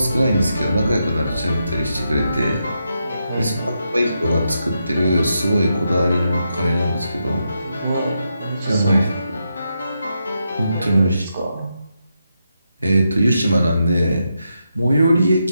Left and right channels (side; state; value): both; inverted; correlation -0.84